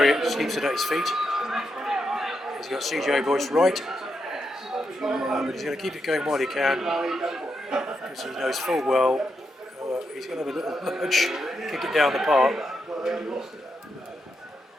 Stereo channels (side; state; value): both; normal; correlation 0.83